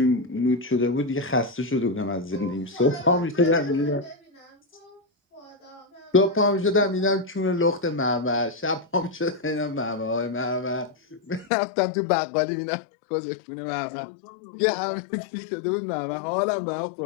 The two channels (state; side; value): drops out; right; at 11.5 s